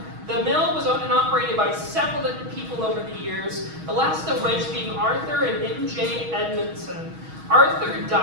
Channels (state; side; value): late; left; 6.3 ms